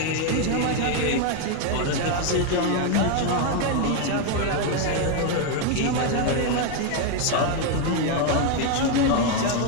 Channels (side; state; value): both; different; correlation 0.01